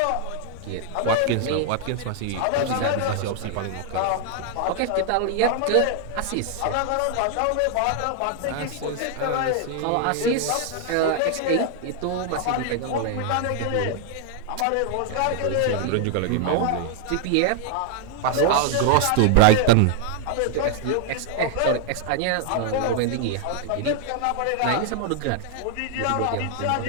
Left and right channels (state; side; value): different; both; correlation 0.00